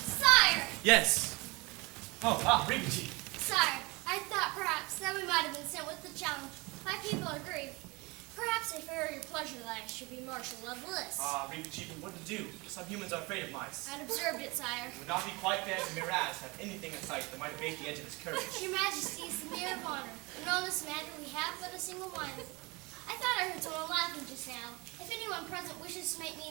Yes. Regency. Sire, I thought perhaps that we might have been sent with the challenge. My people are grieved. Perhaps if it were your pleasure that I should be marshal of the list. Regency, what to do? Some humans are afraid of mice. I'd observed it, sire. It would not be quite fair to Miraz have anything in sight that might abate the edge of his courage. Your Majesty is the mirror of honor, and on this matter we have but a single mind. I thought I heard someone laughing just now. If anyone present wishes to make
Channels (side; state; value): left; quieter; 25.5 dB